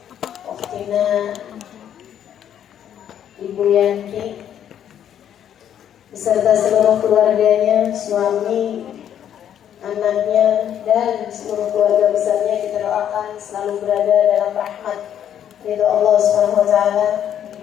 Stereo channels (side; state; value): right; quieter; 9.8 dB